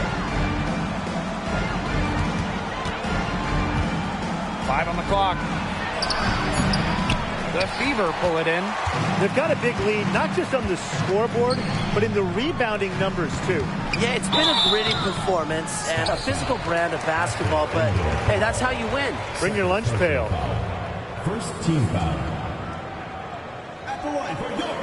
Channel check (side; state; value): both; identical; correlation 1.00